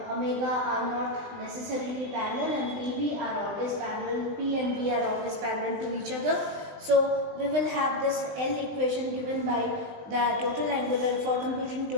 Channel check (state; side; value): late; left; 20 ms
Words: omega are not necessarily parallel, and PV are always parallel, P and V are always parallel to each other. So we will have this L equation given by the total angular. For computing